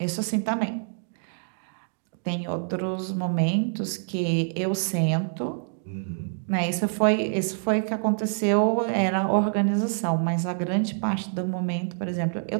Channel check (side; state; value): left; silent; digital silence